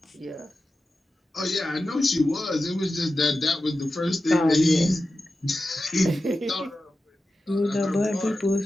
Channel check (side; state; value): both; normal; correlation 0.93